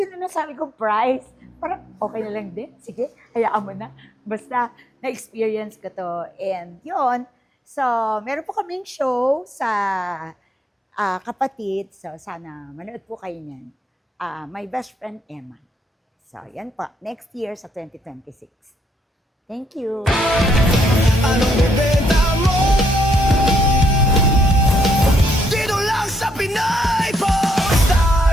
na nasabi kong price? Parang okay na lang din. Sige, hayaan mo na. Basta na-experience ko to. And yun, so meron po kaming show sa Kapatid. So sana manood po kayo niyan. My Best Friend Emma. So, yan po. Next year sa 2026. Thank you.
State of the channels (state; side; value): normal; both; correlation 0.73